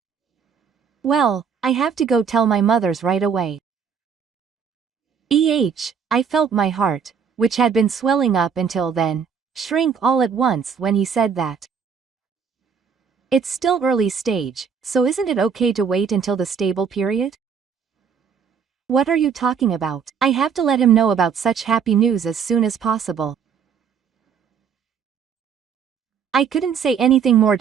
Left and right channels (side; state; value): left; quieter; 6.7 dB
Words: Well, I have to go tell my mothers right away. I felt my heart, which had been swelling up until then, shrink all at once when he said that. It's still early stage, so isn't it okay to wait until the stable period? What are you talking about? I have to let him know about such happy news as soon as possible. I couldn't say anything more